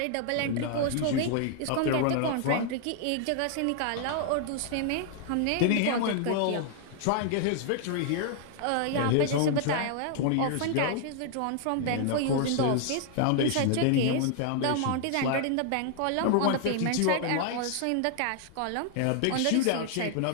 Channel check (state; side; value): different; both; correlation 0.00